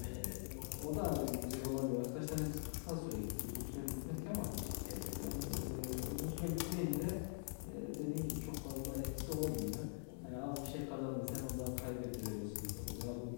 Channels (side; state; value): right; silent; digital silence